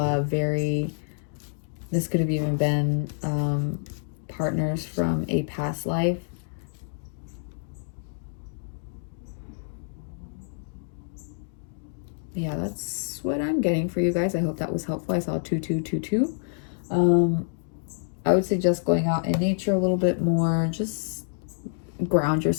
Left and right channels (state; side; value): silent; right; digital silence